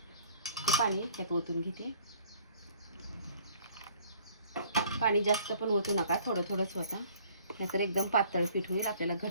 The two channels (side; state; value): both; inverted; correlation -0.56